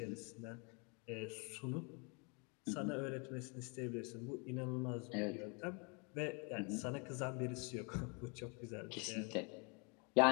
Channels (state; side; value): quieter; right; 33.3 dB